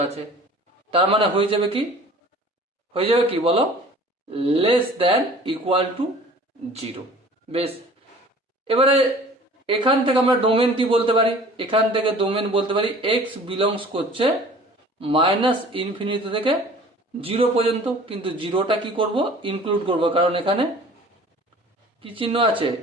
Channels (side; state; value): both; normal; correlation 0.47